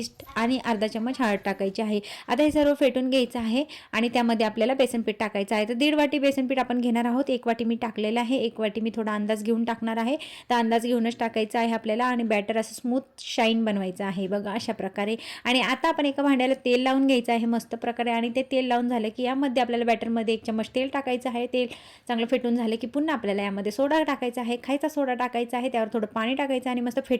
आणि अर्धा चम्मच हळद टाकायची आहे. आता हे सर्व फेटून घ्यायचं आहे आणि त्यामध्ये आपल्याला बेसन पीठ टाकायचं आहे. तर 1.5 वाटी बेसन पीठ आपण घेणार आहोत. 1 वाटी मी टाकलेलं आहे. 1 वाटी मी थोडा अंदाज घेऊन टाकणार आहे. तर अंदाज घेऊनच टाकायचं आहे आपल्याला आणि बॅटर असं स्मूथ शाईन बनवायचं आहे बघा अशा प्रकारे. आणि आता आपण एका भांड्याला तेल लावून घ्यायचं आहे मस्त प्रकारे आणि ते तेल लावून झालं की यामध्ये आपल्याला बॅटरमध्ये 1 चम्मच तेल टाकायचं आहे. तेल चांगलं फेटून झालं की पुन्हा आपल्याला यामध्ये सोडा टाकायचा आहे. खायचा सोडा टाकायचा आहे. त्यावर थोडं पाणी टाकायचं आणि मस्त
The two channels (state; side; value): identical; both; correlation 1.00